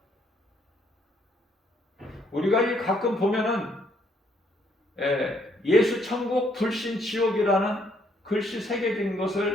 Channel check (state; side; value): normal; both; correlation 0.69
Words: 우리가 가끔 보면은 예수 천국 불신 지옥이라는 글씨 새겨진